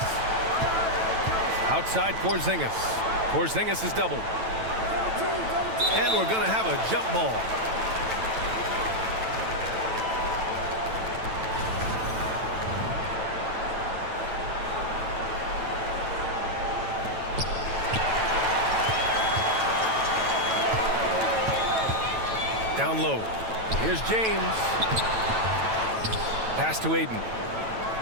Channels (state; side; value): late; left; 9.0 ms